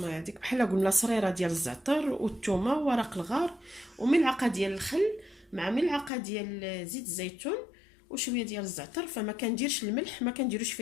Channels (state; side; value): drops out; right; at 6.1 s